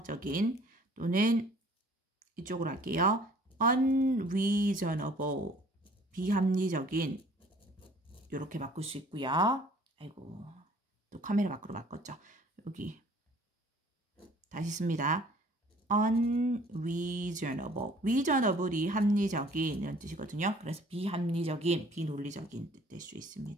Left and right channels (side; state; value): both; normal; correlation 0.54